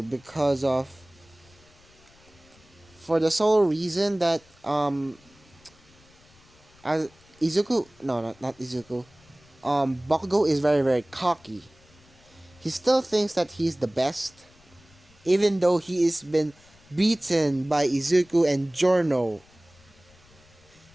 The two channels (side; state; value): left; noise; rumble, 28 dB below the sound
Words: because of for the sole reason that as Izuku no not Izuku Bakugo is very very cocky. He still thinks that he's the best, even though he has been beaten by Izuku and Giorno.